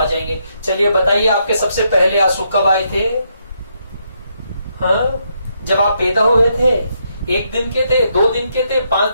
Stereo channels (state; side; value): inverted; both; correlation -0.77